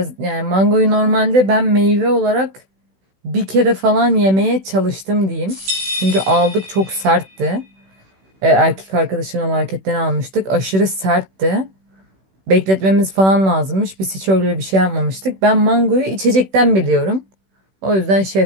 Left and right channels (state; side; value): late; left; 16 ms